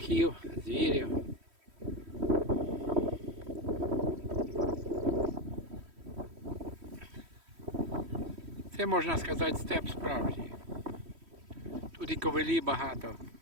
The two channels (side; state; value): left; late; 3.1 ms